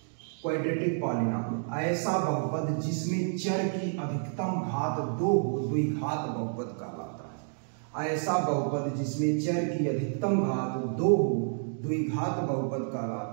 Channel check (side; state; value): left; silent; digital silence